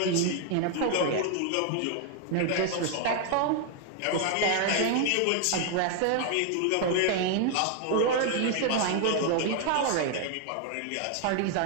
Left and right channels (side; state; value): both; different; correlation 0.00